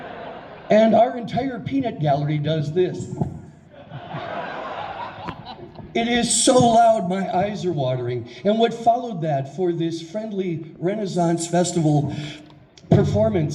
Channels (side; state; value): both; identical; correlation 1.00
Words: and our entire peanut gallery does this. It is so loud, my eyes are watering. And what followed that for this friendly Renaissance Festival